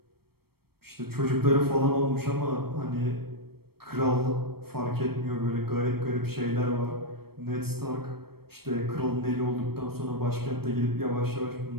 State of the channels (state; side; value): late; left; 0.95 ms